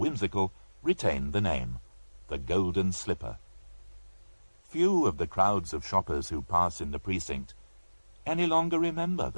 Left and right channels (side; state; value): both; inverted; correlation -1.00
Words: retained the name, the Golden Slipper. Few of the crowds of shoppers who pass in the precinct any longer remember